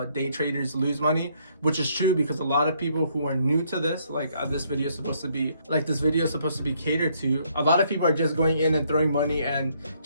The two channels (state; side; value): inverted; both; correlation -0.69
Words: day traders lose money, which is true, because a lot of people who are new to this, like this video is supposed to be catered to. A lot of people are just going in and throwing money and